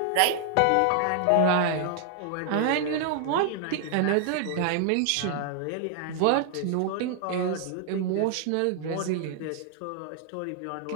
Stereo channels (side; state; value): both; different; correlation 0.00